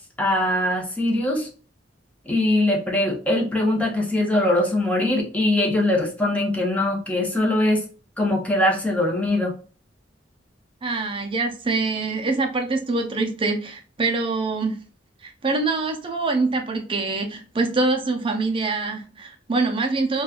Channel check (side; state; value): both; normal; correlation 0.55